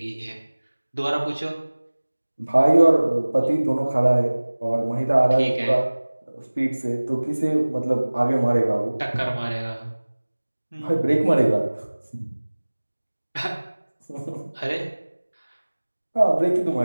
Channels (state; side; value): inverted; both; correlation -1.00